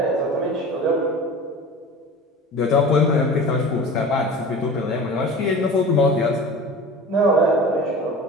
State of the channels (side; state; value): both; normal; correlation 0.36